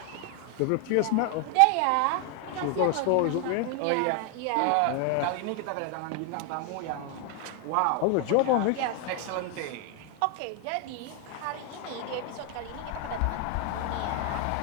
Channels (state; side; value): different; both; correlation 0.00